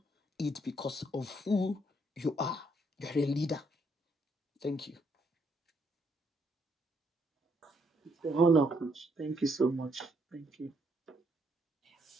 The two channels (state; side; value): normal; both; correlation 0.72